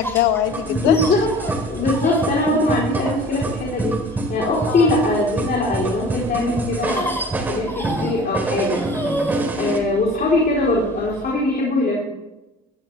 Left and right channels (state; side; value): normal; both; correlation 0.43